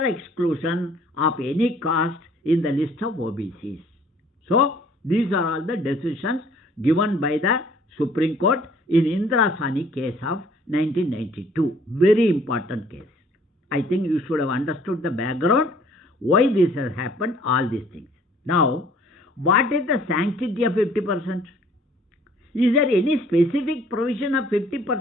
exclusion of any caste in the list of OBCs. So, these are all the decisions given by the Supreme Court in Indira Sawhney case of 1992. Very important case. I think you should have understood the background, why this has happened, all these things. Now, what is the sanctity of 50%? Is there any specific provision of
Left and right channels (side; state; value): both; normal; correlation 0.57